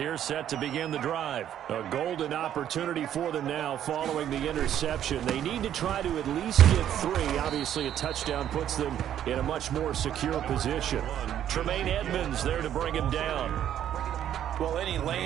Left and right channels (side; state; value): left; quieter; 10.6 dB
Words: set to begin the drive. A golden opportunity for them now following the interception. They need to try to at least get 3. Obviously, a touchdown puts them in a much more secure position. Tremaine Edmonds there to bring him down. Well, any